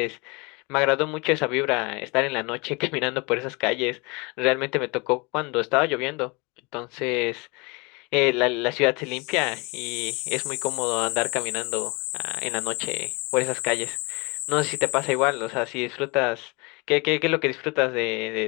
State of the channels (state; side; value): quieter; right; 28.3 dB